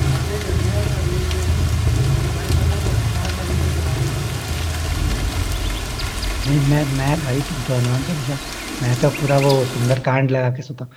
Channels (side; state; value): both; identical; correlation 1.00